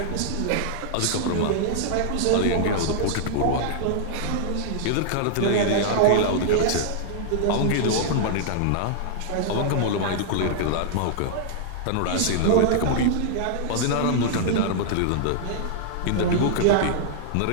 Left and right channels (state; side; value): different; both; correlation -0.01